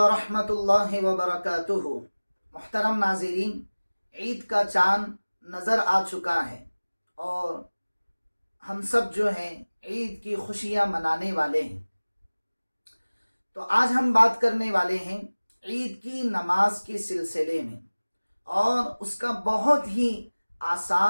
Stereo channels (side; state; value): both; inverted; correlation -1.00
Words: اللہ وبرکاتہ۔ محترم ناظرین، عید کا چاند نظر آ چکا ہے اور ہم سب جو ہیں عید کی خوشیاں منانے والے ہیں۔ تو آج ہم بات کرنے والے ہیں عید کی نماز کے سلسلے میں، اور اس کا بہت ہی